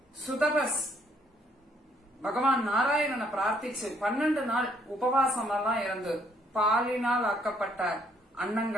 சுதபஸ் பகவான் நாராயணனை பிரார்த்திச்சு 12 நாள் உபவாசம் எல்லாம் இருந்து பாலினால் ஆக்கப்பட்ட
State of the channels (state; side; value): normal; both; correlation 0.67